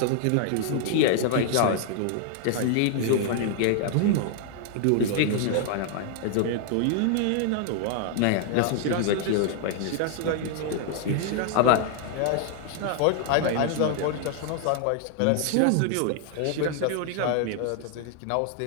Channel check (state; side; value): different; both; correlation 0.00